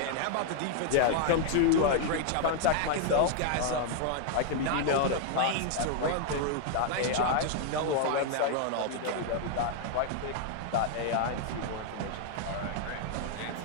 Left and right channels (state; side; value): different; both; correlation 0.00